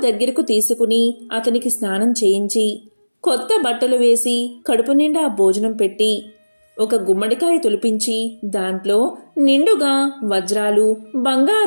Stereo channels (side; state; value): both; inverted; correlation -1.00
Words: దగ్గరకు తీసుకుని అతనికి స్నానం చేయించి కొత్త బట్టలు వేసి కడుపు నిండా భోజనం పెట్టి ఒక గుమ్మడికాయ తొలిపించి దాంట్లో నిండుగా వజ్రాలు